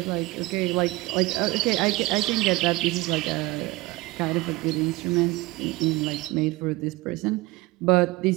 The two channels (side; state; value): left; quieter; 21.1 dB